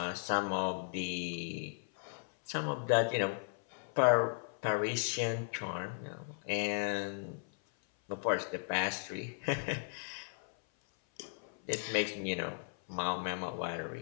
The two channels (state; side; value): silent; right; 54 dB below the other